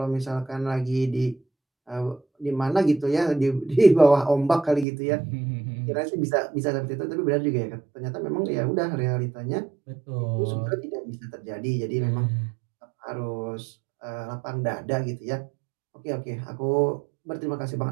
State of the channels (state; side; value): drops out; left; at 4.9 s